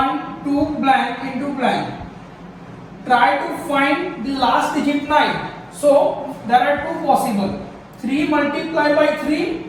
2 blank into blank. Try to find the last digit 9. So there are two possible. 3 multiplied by 3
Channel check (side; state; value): both; identical; correlation 1.00